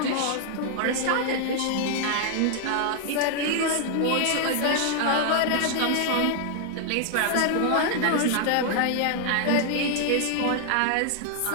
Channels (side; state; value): both; different; correlation 0.00